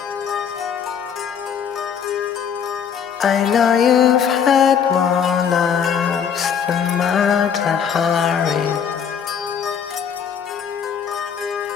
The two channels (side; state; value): right; quieter; 7.6 dB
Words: I know you've had more loves than Mata Hari,